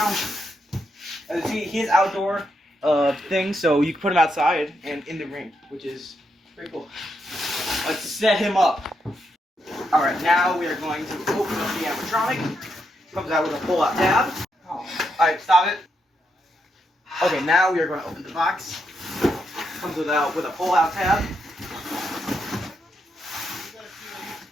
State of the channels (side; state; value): both; normal; correlation 0.81